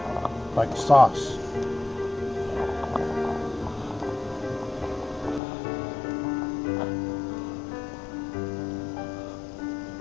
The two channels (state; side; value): drops out; right; at 5.4 s